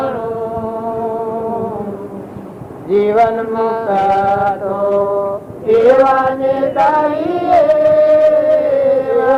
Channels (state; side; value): identical; both; correlation 1.00